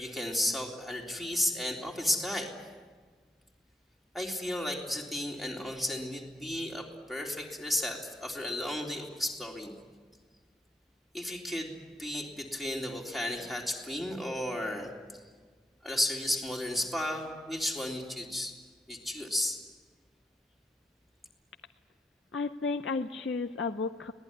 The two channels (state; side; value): normal; both; correlation 0.76